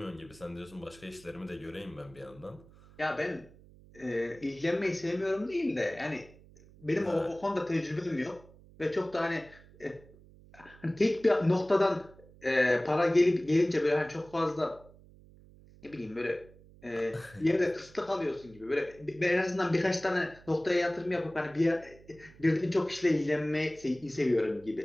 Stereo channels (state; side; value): noise; right; hum, 23 dB below the sound